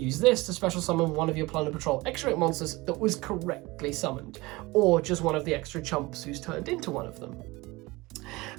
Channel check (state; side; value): quieter; left; 22.0 dB